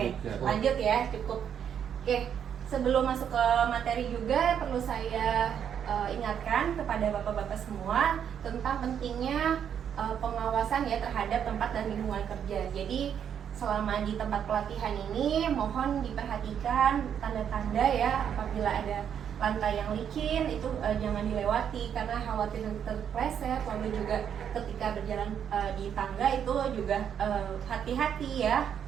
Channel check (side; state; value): left; quieter; 8.5 dB